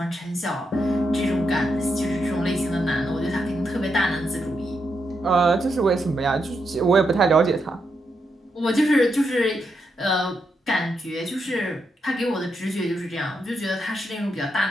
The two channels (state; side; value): normal; both; correlation 0.82